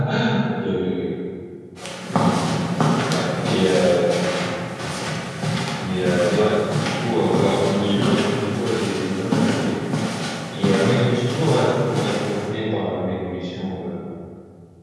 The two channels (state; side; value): identical; both; correlation 1.00